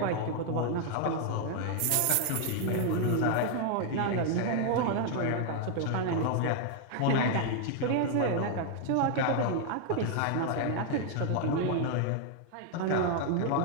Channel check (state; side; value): different; both; correlation 0.00